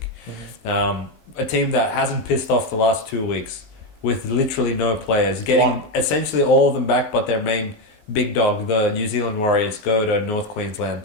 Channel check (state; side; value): late; right; 19 ms